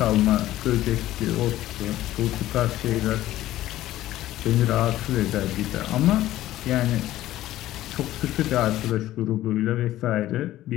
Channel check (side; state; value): right; quieter; 14.7 dB